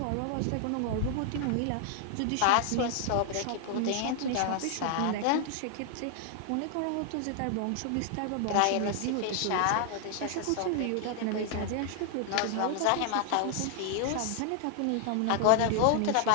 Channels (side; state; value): both; different; correlation 0.00